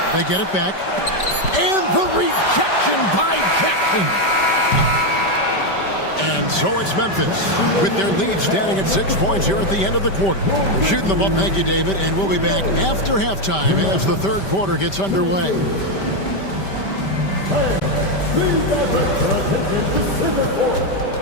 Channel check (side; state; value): right; late; 5.1 ms